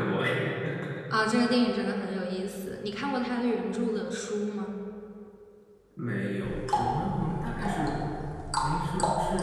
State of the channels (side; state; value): both; identical; correlation 1.00